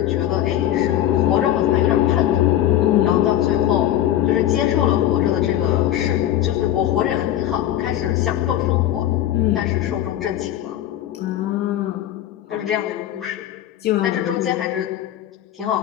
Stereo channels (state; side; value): quieter; right; 12.4 dB